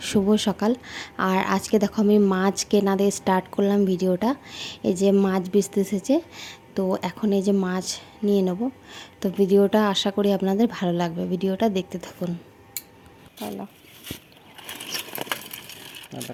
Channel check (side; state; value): both; identical; correlation 1.00